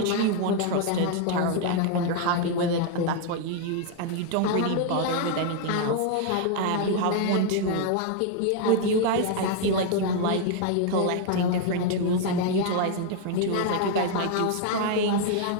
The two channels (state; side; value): different; both; correlation 0.00